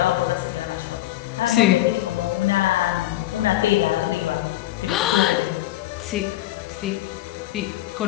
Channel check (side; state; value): right; quieter; 15.4 dB